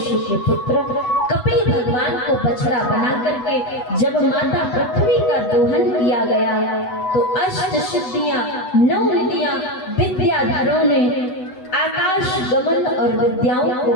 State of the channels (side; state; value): right; late; 8.0 ms